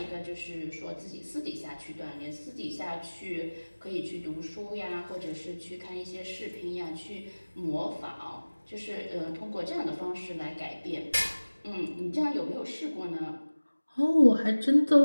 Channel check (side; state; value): both; inverted; correlation -1.00